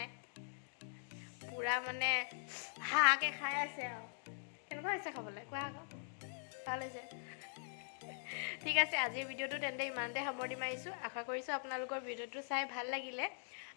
পূৰা মানে হাহাকে খাই আছে আৰু। কেনেকুৱা হৈছে খাবলৈ কোৱা আকৌ? ভাল হৈছে। ঠিক আছে, আজিৰ ভিডিঅ'টো তেন্তে ইমানতে সামৰণি মাৰিছোঁ। আশা কৰিছোঁ আপোনালোকৰ ভিডিঅ'টো চাই ভাল লাগিলে,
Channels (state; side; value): silent; right; digital silence